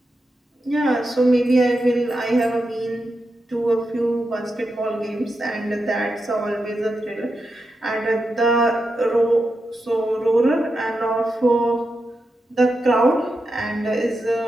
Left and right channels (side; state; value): both; normal; correlation 0.88